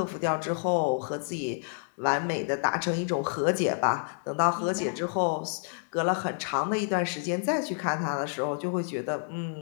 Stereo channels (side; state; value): right; silent; digital silence